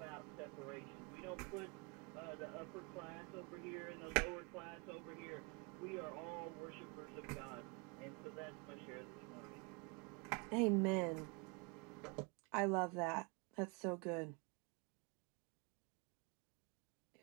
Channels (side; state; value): left; quieter; 31.3 dB